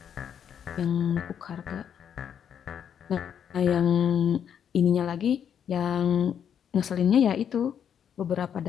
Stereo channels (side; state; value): right; quieter; 8.5 dB